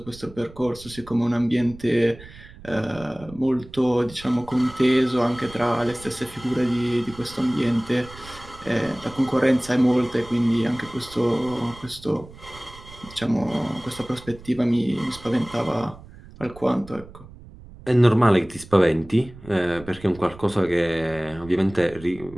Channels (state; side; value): noise; right; rumble, 19 dB below the sound